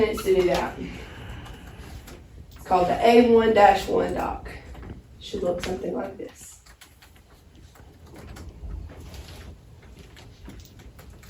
to do that. It's called the A1-1 doc. Should look something like this.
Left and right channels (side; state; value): both; identical; correlation 1.00